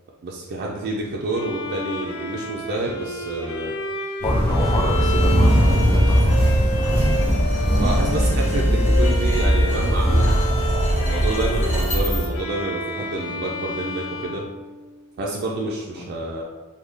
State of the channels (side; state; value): both; normal; correlation 0.75